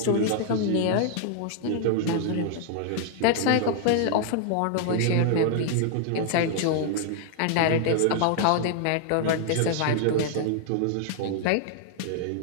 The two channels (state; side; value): different; both; correlation 0.00